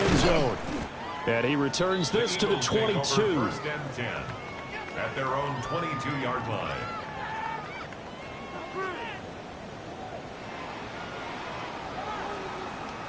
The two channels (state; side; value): identical; both; correlation 1.00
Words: zone. And he returns this to the 22. 1st and 10 at their own 22-yard line.